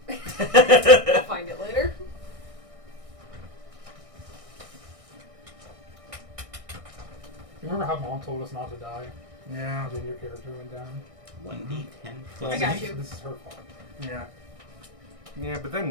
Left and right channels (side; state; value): left; late; 1.6 ms